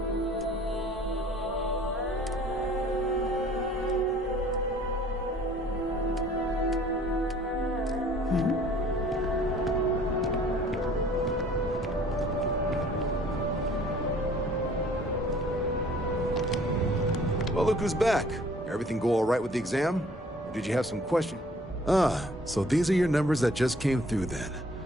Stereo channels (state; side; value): normal; both; correlation 0.54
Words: Well, look who's back. Everything go all right with the exam? Or did you have some question? Ah, so these are your numbers that just came through then.